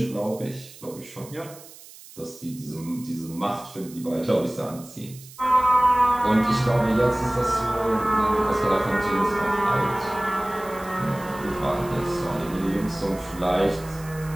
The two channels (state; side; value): noise; right; hiss, 19 dB below the sound